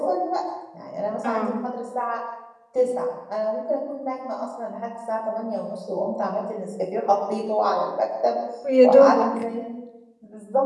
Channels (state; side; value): identical; both; correlation 1.00